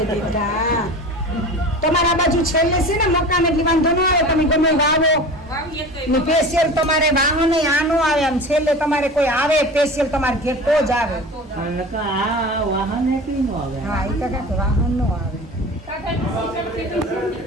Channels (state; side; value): normal; both; correlation 0.35